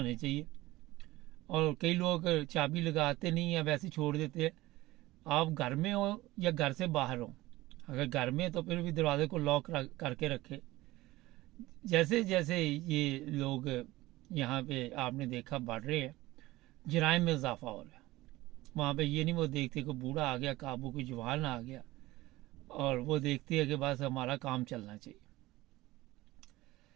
चाहिए। और कई लोग चाबी लगाते नहीं हैं, वैसे छोड़ देते हैं। आप घर में हो या घर से बाहर हो, अगर घर में तो फिर भी दरवाजे को लॉक करके रखें। जैसे जैसे ये लोग यहाँ पे आपने देखा बढ़ रहे हैं, जराइम में इजाफा हो रहा है। वहाँ पे ये नहीं वो देखते कि बूढ़ा आ गया काबू, कोई जवान आ गया, और वो देखती है कि बस हमारा काम चलना चाहिए।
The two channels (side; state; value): left; quieter; 18.3 dB